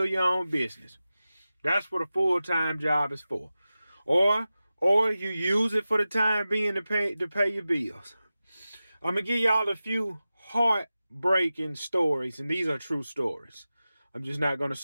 your own business. That's what a full-time job is for. Or or you use it for the time being to pay your bills. I'm gonna give y'all a few heartbreaking stories, and these are true stories. I'm just not gonna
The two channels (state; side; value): inverted; both; correlation -0.95